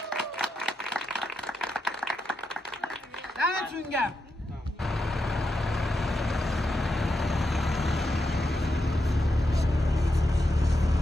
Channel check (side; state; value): both; normal; correlation 0.85